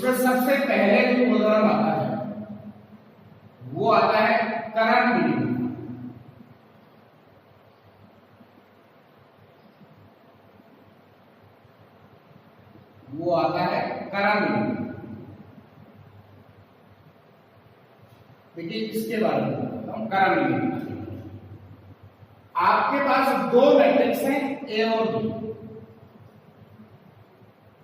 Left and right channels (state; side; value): identical; both; correlation 1.00